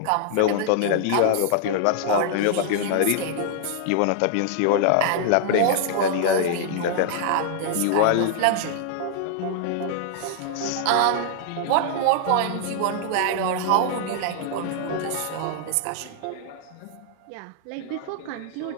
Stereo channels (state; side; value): different; both; correlation -0.01